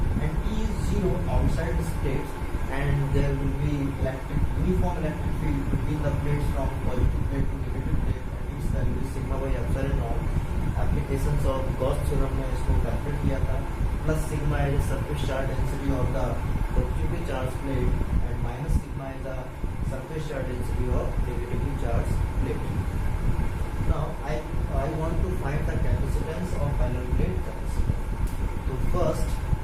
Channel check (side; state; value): both; identical; correlation 1.00